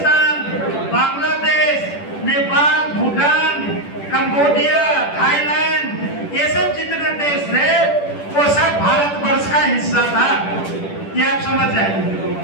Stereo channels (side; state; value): right; late; 10 ms